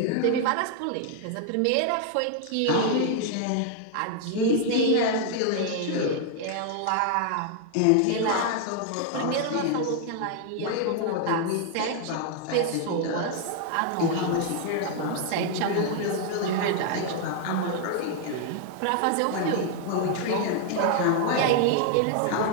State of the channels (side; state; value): both; different; correlation 0.00